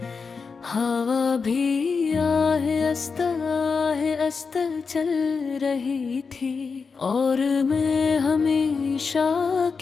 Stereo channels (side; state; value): right; quieter; 5.1 dB